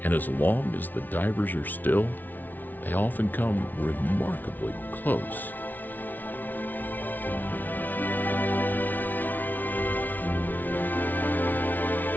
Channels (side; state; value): right; late; 0.084 ms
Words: and as long as the divers are still, they often come remarkably close.